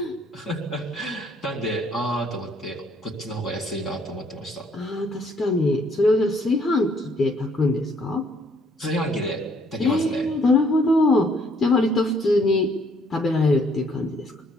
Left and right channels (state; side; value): normal; both; correlation 0.65